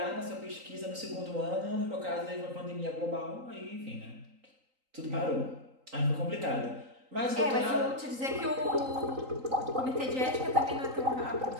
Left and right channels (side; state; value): left; late; 3.8 ms